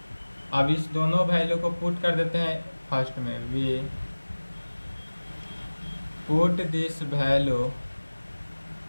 अब इस दोनों value को put कर देते हैं फर्स्ट में, we put this value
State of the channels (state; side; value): inverted; both; correlation -1.00